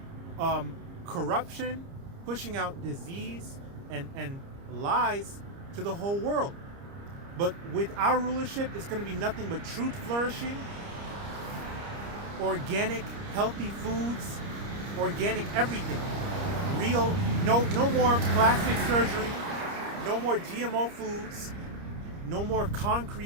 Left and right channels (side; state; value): left; late; 30 ms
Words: corruption, pushing out disease and lies to the whole world. But with our rulership, it's going to be nothing but truth flourishing, organic, healthy foods, organic everything. Real, no more plastic surgery, no more GMO foods, no more